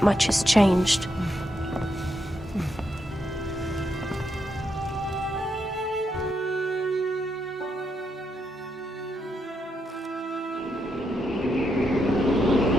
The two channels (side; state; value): both; normal; correlation 0.81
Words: much has changed.